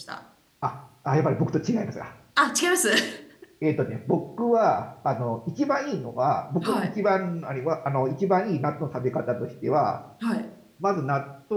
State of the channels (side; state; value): both; identical; correlation 1.00